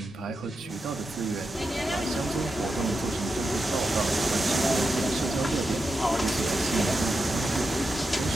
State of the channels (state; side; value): normal; both; correlation 0.88